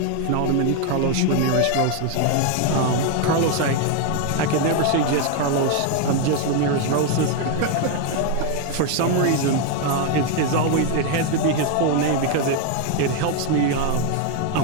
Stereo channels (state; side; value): different; both; correlation 0.01